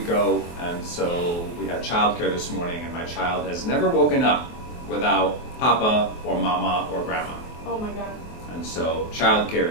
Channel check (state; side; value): late; right; 23 ms